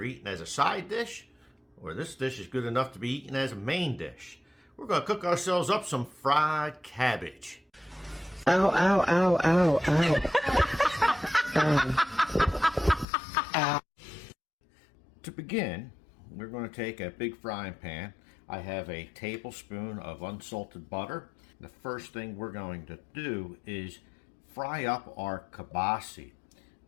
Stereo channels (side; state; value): right; drops out; at 13.1 s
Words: eaten as a side dish or this dish is good enough to be eaten as a main dish. We're going to cook ourselves up some fried cabbage. Ow, ow, ow, ow, ow. Ow. To begin, we're going to take a big frying pan. I have a tablespoon of unsalted butter. The first thing we're going to do is fry up our kielbasa.